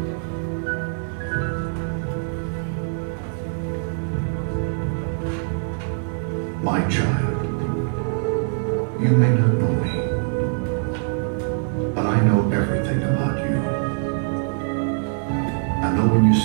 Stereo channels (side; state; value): left; silent; 63 dB below the other